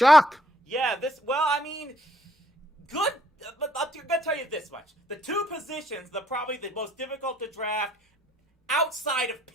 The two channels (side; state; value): both; normal; correlation 0.67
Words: Yeah, good. But I'm gonna tell you this much: the two positions, probably the most difficult to draft outside of